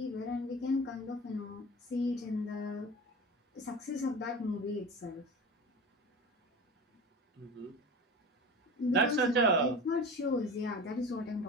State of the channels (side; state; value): both; normal; correlation 0.33